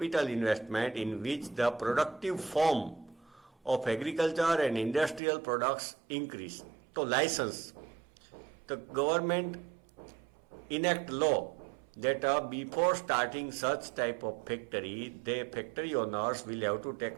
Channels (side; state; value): left; drops out; at 5.2 s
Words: investment in which the productive form of agriculture and industrial products increase. So license, the government enact law that before starting such type of factory, the factory owners will have to